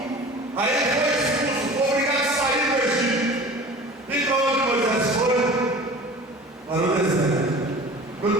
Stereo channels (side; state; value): both; normal; correlation 0.40